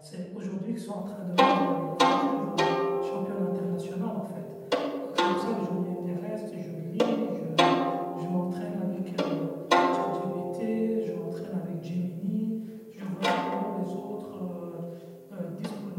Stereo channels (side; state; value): both; identical; correlation 1.00